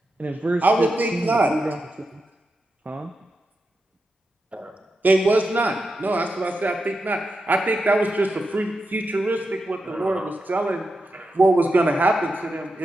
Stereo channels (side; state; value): both; normal; correlation 0.88